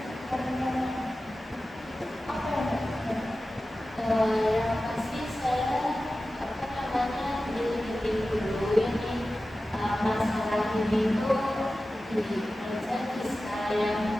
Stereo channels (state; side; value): normal; both; correlation 0.95